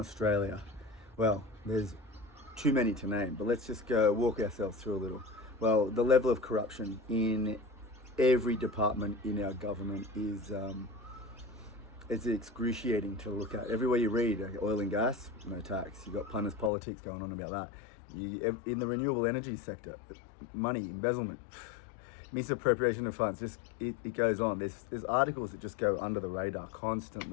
Well, there's too many to name, but let's just go walk ourselves through a little. Well, the level of corruption in every department in our government is it's excruciating to look at. Everywhere you read, oil and gas, no tax. You've got punters politics going on about that. In the renewable energy sector, money, embezzlement, misappropriation of funds, just it goes on. There's articles that just go under the radar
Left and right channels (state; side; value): drops out; right; at 16.7 s